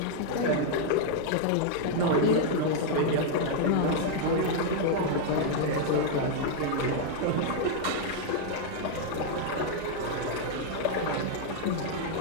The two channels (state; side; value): different; both; correlation 0.00